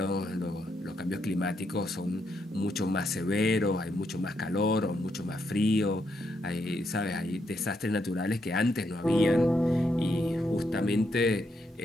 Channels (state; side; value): normal; both; correlation 0.79